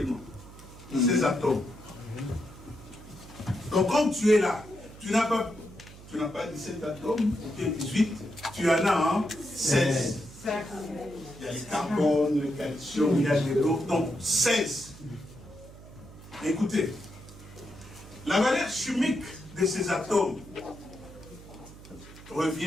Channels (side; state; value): right; noise; hum, 18 dB below the sound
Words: 16 atomes. Donc quand tu es là, tu n'as pas 17 atomes, ou bien 18, tu en as 16. Il y a les carbones, le calcium, il y a l'eau, donc 16. Écoutez, la valeur chimique de ces atomes